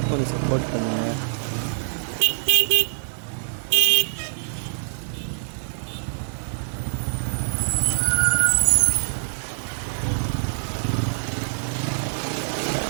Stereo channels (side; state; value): left; silent; digital silence